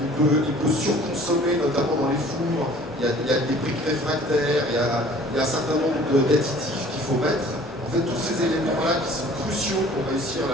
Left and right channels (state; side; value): normal; both; correlation 0.50